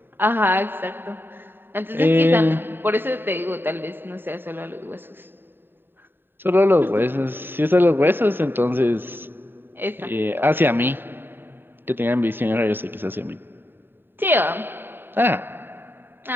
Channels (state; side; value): late; left; 0.098 ms